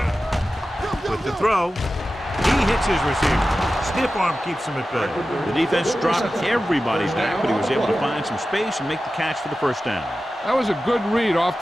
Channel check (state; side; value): normal; both; correlation 0.94